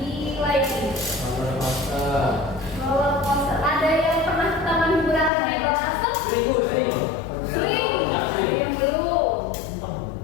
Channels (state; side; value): drops out; right; at 5.3 s